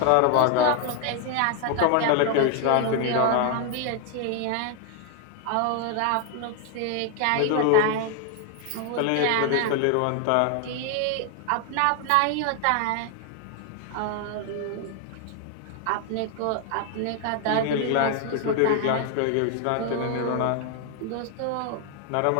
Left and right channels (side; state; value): both; different; correlation 0.00